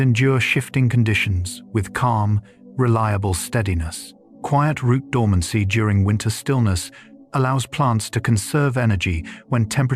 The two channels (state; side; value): identical; both; correlation 1.00